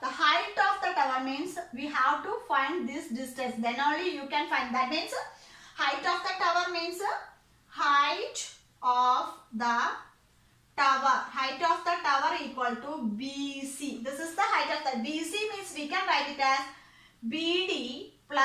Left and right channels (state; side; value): identical; both; correlation 1.00